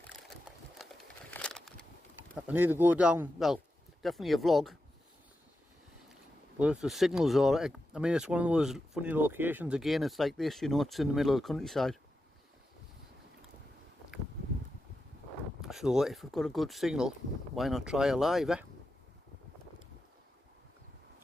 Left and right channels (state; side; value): normal; both; correlation 0.89